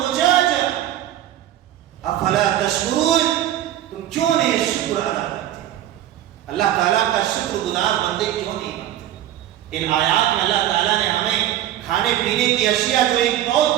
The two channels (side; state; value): left; quieter; 12.5 dB